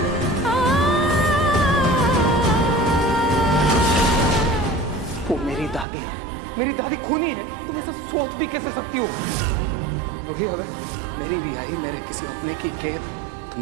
वो मेरी दादी है, मेरी दादी खूनी है। तुम ऐसा सोच भी कैसे सकती हो? रूही, अगर मेरी रिहाई मेरे किसी अपने की कैद, तो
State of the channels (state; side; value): drops out; left; at 5.9 s